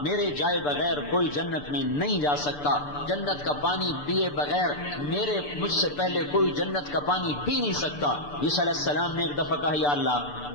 میرے جائے بغیر کوئی جنت میں نہیں جا سکتا، جنت کا پانی پیے بغیر مجھ سے پہلے کوئی جنت کا پانی پی نہیں سکتا۔ عیسیٰ علیہ السلام نے ایک دفعہ کہا یا اللہ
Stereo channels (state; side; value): late; right; 6.8 ms